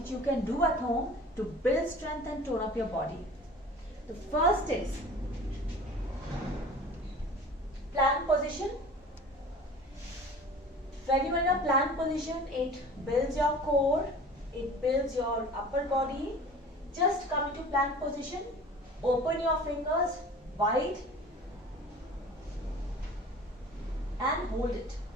you can do at home to build strength and tone up your body. The first is plank position. When you are in a plank position, it builds your core, it builds your upper body. Just come into plank position, open your fingers wide and hold it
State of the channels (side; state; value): both; normal; correlation 0.42